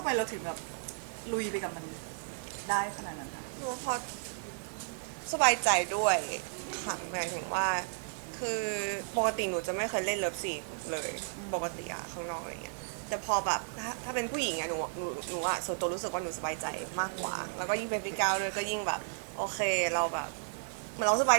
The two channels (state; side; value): silent; left; 55 dB below the other